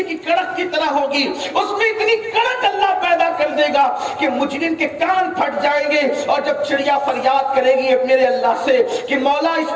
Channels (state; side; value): identical; both; correlation 1.00